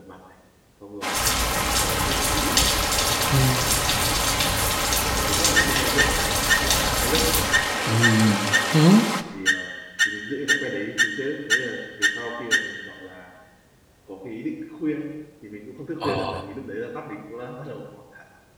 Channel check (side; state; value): both; identical; correlation 1.00